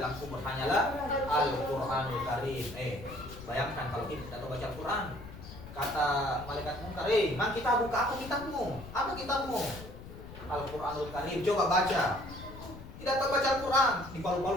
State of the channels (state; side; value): noise; left; rumble, 14 dB below the sound